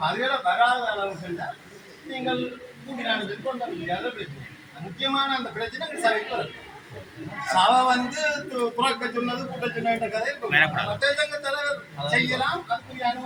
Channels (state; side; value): identical; both; correlation 1.00